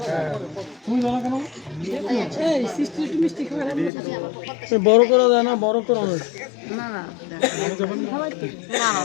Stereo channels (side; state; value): right; drops out; at 3.9 s